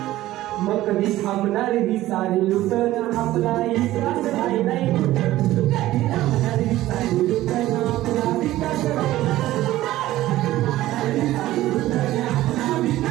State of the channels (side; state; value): left; quieter; 15.4 dB